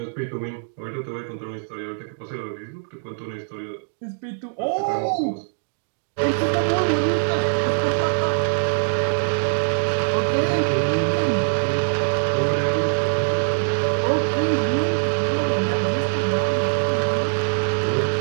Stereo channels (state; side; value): silent; left; digital silence